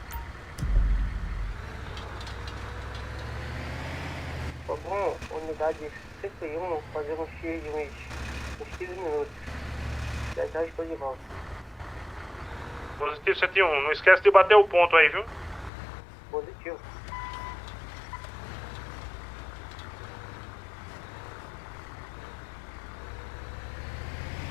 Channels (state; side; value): drops out; right; at 15.7 s